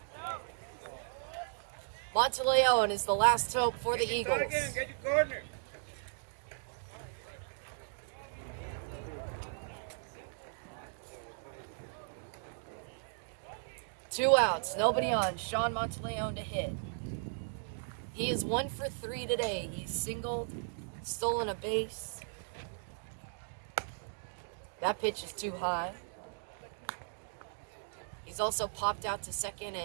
Monteleone is the last hope for the Eagles. Get your corner. Two outs, nobody on. Sean Monteleone to hit. He is 1 for 3 today. He's singled, stolen a base. That pitch is too high. He's also popped out to second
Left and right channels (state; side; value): silent; left; digital silence